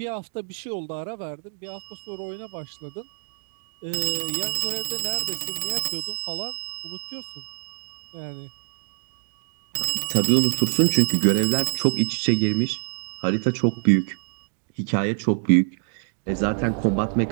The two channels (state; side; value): silent; left; digital silence